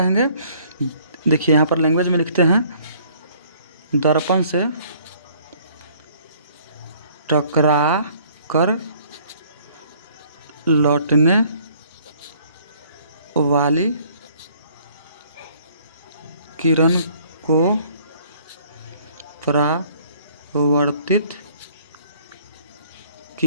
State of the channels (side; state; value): both; inverted; correlation -0.59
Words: देखिए यहाँ पर लैंग्वेज में लिखते हैं, दर्पण से टकरा कर लौटने वाली किरण को परावर्तित